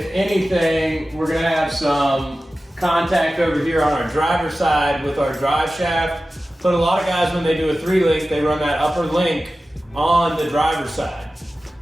anything, we're gonna have some contact over here on our driver's side with our drive shaft. But a lot of guys, when they do a 3-link, they run that upper link on the driver's side.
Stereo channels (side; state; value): both; normal; correlation 0.95